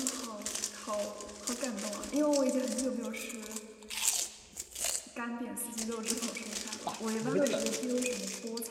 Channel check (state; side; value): identical; both; correlation 1.00